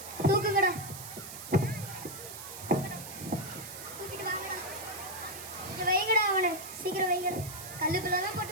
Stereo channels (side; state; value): right; noise; hiss, 11 dB below the sound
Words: தூக்குங்கடா. தூக்கிட்டு வாங்கடா. இங்க வைங்கடா அவனை, சீக்கிரம் வைங்கடா. கல்லு பிள்ளெல்லாம்